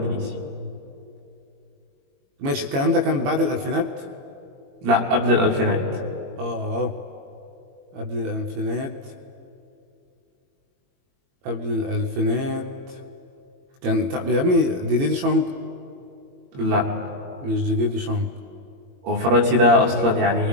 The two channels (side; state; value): left; late; 22 ms